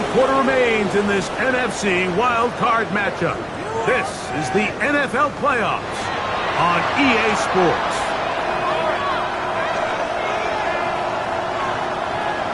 quarter remains in this NFC wild card matchup. This is the NFL playoffs on EA Sports.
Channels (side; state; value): both; identical; correlation 1.00